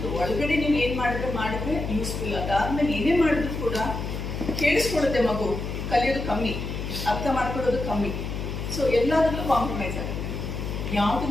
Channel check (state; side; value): noise; left; hum, 5 dB below the sound